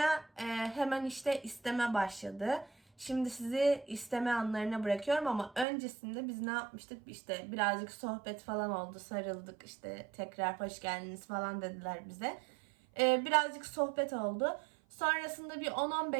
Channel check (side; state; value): left; drops out; at 5.7 s